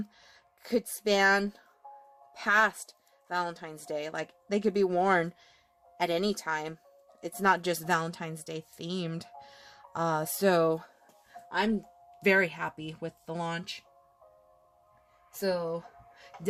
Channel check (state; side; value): identical; both; correlation 1.00